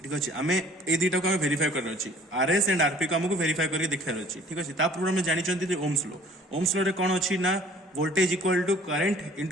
ठीक अच्छे आम ए दुटा को आम वेरीफाई करना अच्छी आरएस एंड आरपी को आमको वेरीफाई करके देखार अच्छी। ठीक अच्छे पूर्व आम जानते ओम्स लॉ रे कौन अच्छी ना voltage equal to current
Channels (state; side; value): normal; both; correlation 0.52